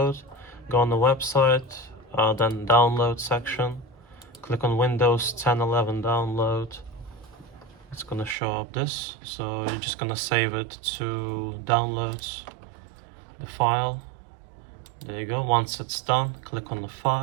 go on the website, then download section, click on Windows 10, 11 download. It's gonna show up this. So you're just gonna save it to downloads, the file. There you go. Once it's done, click on the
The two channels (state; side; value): drops out; left; at 8.3 s